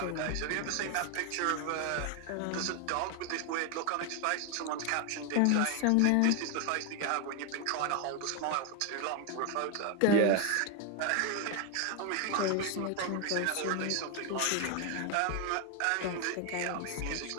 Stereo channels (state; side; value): different; both; correlation 0.01